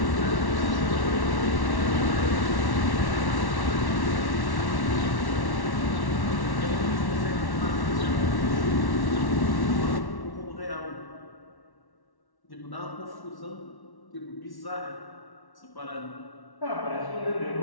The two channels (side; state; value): right; late; 1.1 ms